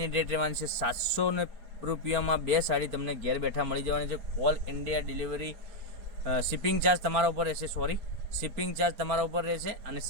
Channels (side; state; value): left; late; 4.3 ms